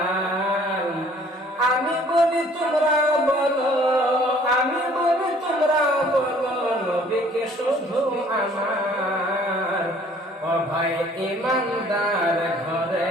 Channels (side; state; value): both; normal; correlation 0.56